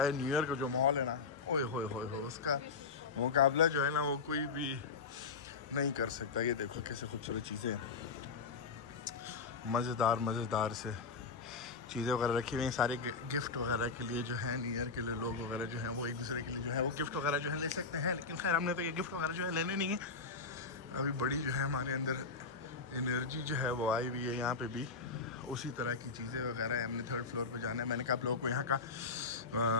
है न्यू ईयर का जो माहौल है ना, ओए होए होए हो, उसका मुकाबला जो है ना वो कोई भी नहीं कर सकता। ये देखो कैसे खूबसूरत चीज़ें, मज़ेदार से चीज़ें वगैरह रखी हुई हैं। सारे गिफ्ट वगैरह के लिए जो है न्यू ईयर के लिए लोग वगैरह जो हैं वो एक दूसरे के लिए जो है वो गिफ्ट वगैरह जो है ले सकते हैं। लेकिन खैर हमने तो ये गिफ्ट वगैरह जो है लेने नहीं है। अभी बड़ी जो है हमारे अंदर एनर्जी जो है वो आई हुई है। यहाँ पे भी उसी तरह की चीज़ें वगैरह है। हमने 3rd फ्लोर पे जाना है। मैंने कहा आप लोगों को यहाँ का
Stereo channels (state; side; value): quieter; right; 4.6 dB